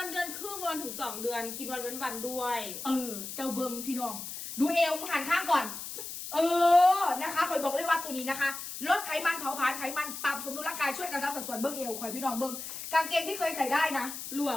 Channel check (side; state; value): left; noise; hiss, 8 dB below the sound